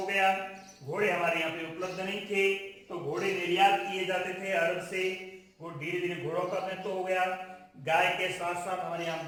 गया। घोड़े हमारे यहाँ पे उपलब्ध नहीं थे तो घोड़े निर्यात किए जाते थे अरब से, वो धीरे धीरे घोड़ों का महत्व हो गया। गाय के साथ साथ हमारे यहाँ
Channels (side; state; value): both; identical; correlation 1.00